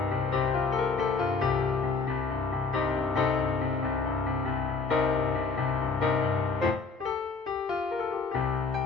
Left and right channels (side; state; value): right; quieter; 4.4 dB